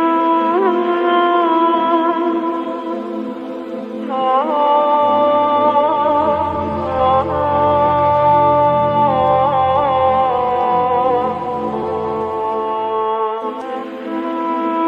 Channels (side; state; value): both; identical; correlation 1.00